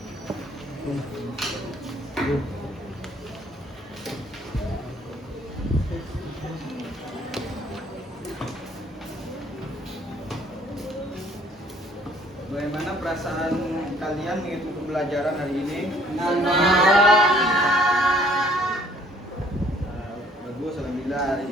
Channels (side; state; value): both; normal; correlation 0.59